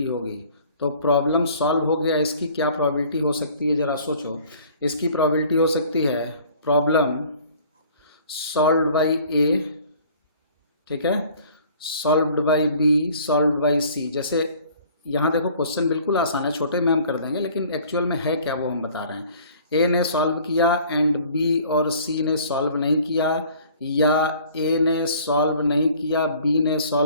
होगी। तो प्रॉब्लम सॉल्व हो गया, इसकी क्या प्रोबेबिलिटी हो सकती है, जरा सोचो। इसकी प्रोबेबिलिटी हो सकती है प्रॉब्लम सॉल्व्ड बाय ए, ठीक है, solved by B, solved by C. जैसे यहाँ देखो क्वेश्चन बिल्कुल आसान है, छोटे में हम कर देंगे, लेकिन एक्चुअल में है क्या वो हम बता रहे हैं। ए ने सॉल्व किया एंड बी और सी ने सॉल्व नहीं किया, या ए ने सॉल्व नहीं किया, बी ने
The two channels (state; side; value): inverted; both; correlation -0.52